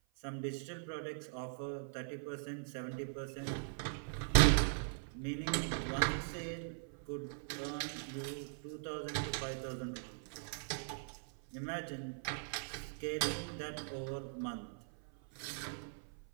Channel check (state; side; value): silent; left; 51 dB below the other